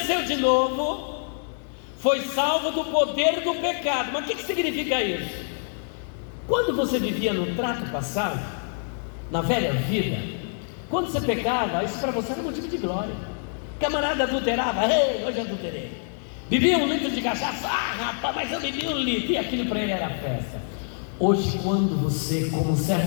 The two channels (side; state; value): right; silent; digital silence